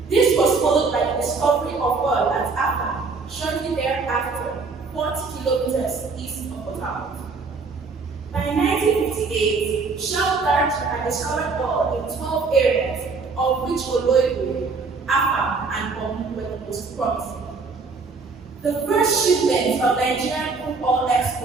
This was followed by the discovery of oil at Apa, shortly thereafter, 40 kilometers east of the town. By 1958, Shell Direction had discovered oil in 12 areas, of which Oloibu, Apa, and Omu were the most promising. The first shipment of Nigerian crude oil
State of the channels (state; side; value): quieter; left; 4.4 dB